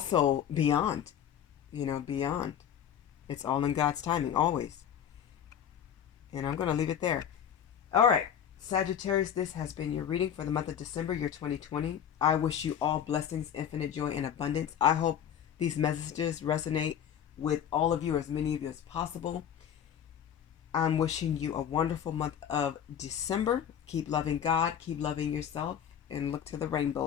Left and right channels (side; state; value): right; quieter; 9.1 dB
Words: beyond. Beyond. It's all in God's timing, always. And I'm going to leave it there. All right. Sagittarius, this has been your reading for the month of December, year 2020. I wish you all blessings, infinite joy, and abundance. I hope these messages resonate with all of you, as many of you as possible. I'm wishing you a wonderful month of December. Keep loving God, keep loving yourself, and look to the